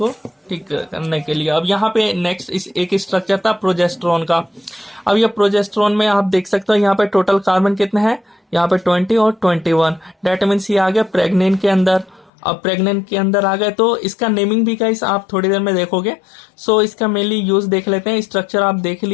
ठीक करने के लिए। अब यहाँ पे नेक्स्ट एक स्ट्रक्चर था प्रोजेस्टेरोन का। अब ये प्रोजेस्टेरोन में आप देख सकते हो यहाँ पे टोटल कार्बन कितने हैं, यहाँ पे 20 और 21। डेट मीन्स ये आ गया प्रेग्नेंट के अंदर। अब प्रेग्नेंट के अंदर आ गए तो इसका नेमिंग भी गाइस आप थोड़ी देर में देखोगे। सो इसका मेनली यूज देख लेते हैं। स्ट्रक्चर आप देख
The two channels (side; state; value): right; drops out; at 12.3 s